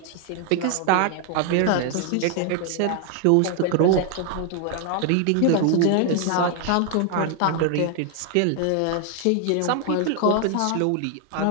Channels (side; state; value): both; different; correlation 0.00